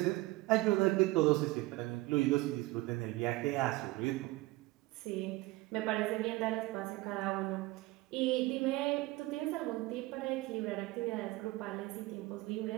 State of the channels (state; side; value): quieter; left; 20.3 dB